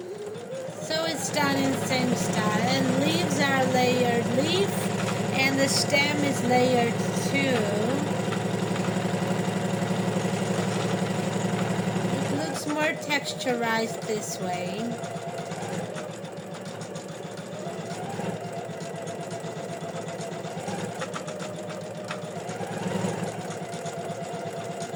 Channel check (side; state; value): both; identical; correlation 1.00